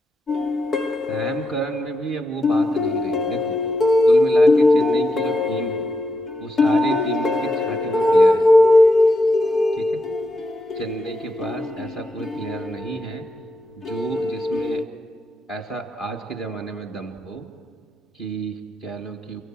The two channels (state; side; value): normal; both; correlation 0.85